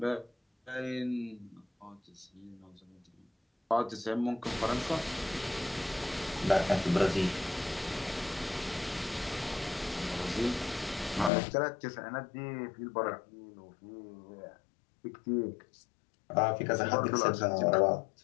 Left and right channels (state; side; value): drops out; right; at 11.3 s